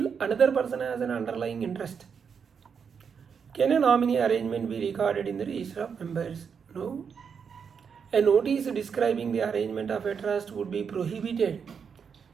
another person has an underlying interest. Can a nominee arrangement be recorded in the register of members? No. A notice describing the arrangement of a trust would be prohibited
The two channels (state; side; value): quieter; left; 6.6 dB